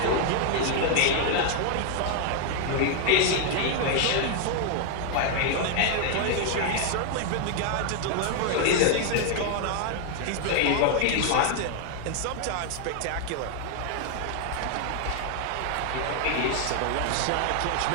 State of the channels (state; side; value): different; both; correlation 0.00